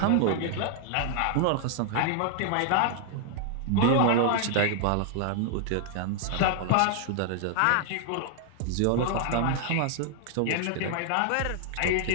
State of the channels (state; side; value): different; both; correlation 0.00